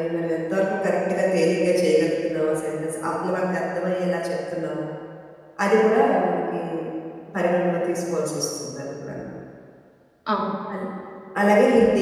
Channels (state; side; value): identical; both; correlation 1.00